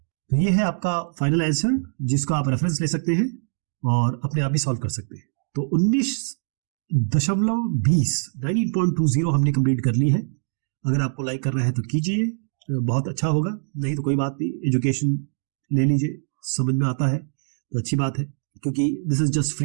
तो ये है आपका फाइनल आंसर, जिसको आप रेफरेंस ले सकते हैं और अपने आप भी सॉल्व कर सकते हैं। तो 19.20 हमने कंप्लीट कर ली है। अगर आपको लाइक करना है तो कीजिए, बहुत अच्छा होगा, नहीं तो कोई बात नहीं, एजुकेशन ले लीजिए, समझ में आता है तो अच्छी बात है, क्योंकि this is just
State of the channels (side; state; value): left; silent; digital silence